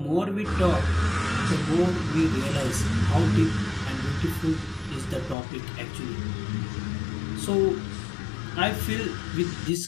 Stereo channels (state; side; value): drops out; right; at 5.4 s